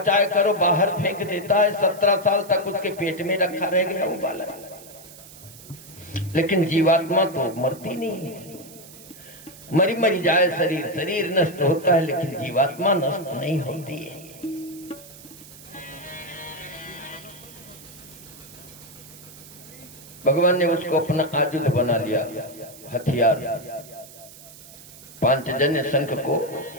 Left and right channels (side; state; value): right; noise; hiss, 19 dB below the sound